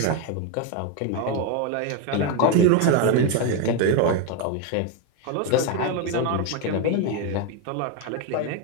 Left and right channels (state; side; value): different; both; correlation 0.02